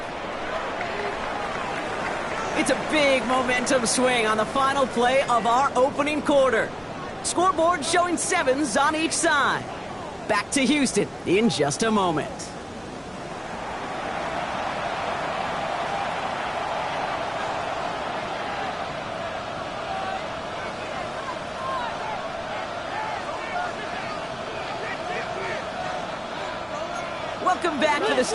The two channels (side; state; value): both; identical; correlation 1.00